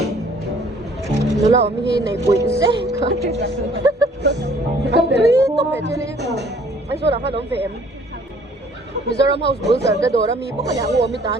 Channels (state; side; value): normal; both; correlation 0.57